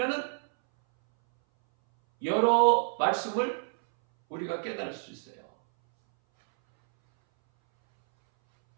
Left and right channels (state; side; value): silent; left; 59 dB below the other